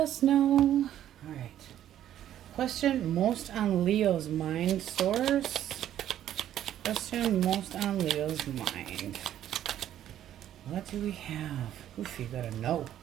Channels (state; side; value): quieter; left; 11.4 dB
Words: no. All right. Question most on Leo's mind, source. Question most on Leo's mind. What do we have? Oof, you gotta know.